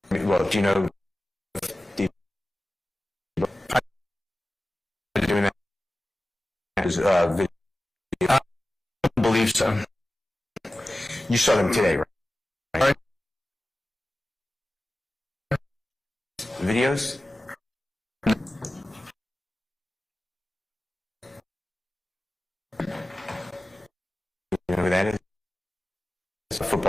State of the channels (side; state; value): both; normal; correlation 0.95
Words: Well, do you know doing that? Video? I don't believe so. You saw them today, right? Videos?